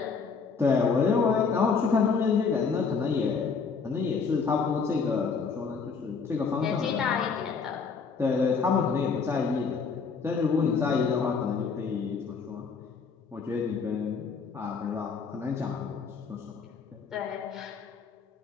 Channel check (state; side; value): quieter; right; 5.3 dB